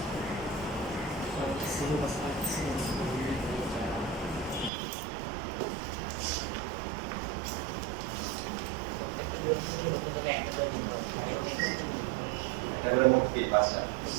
একটা করে মোট কি পাঁচটা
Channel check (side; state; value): left; drops out; at 4.7 s